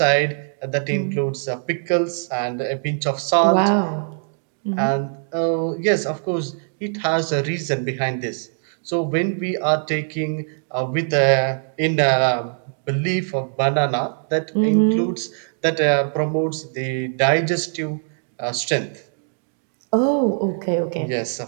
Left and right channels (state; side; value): silent; left; 64 dB below the other